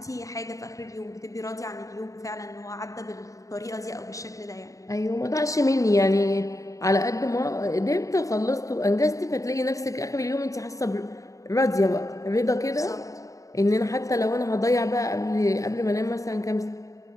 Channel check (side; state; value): right; late; 0.16 ms